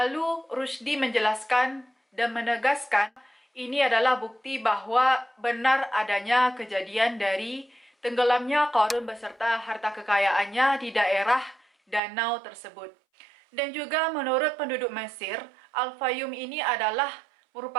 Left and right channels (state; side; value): drops out; left; at 12.0 s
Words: Rushdie menjelaskan dan menegaskan ini adalah bukti bahwa benar adanya kejadian dari tenggelamnya Qarun beserta harta kekayaannya di daerah danau tersebut. Dan juga menurut penduduk Mesir, Al-Fayum ini adalah